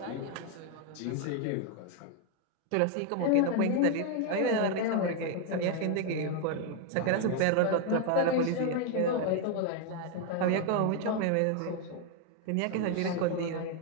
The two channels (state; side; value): different; both; correlation 0.01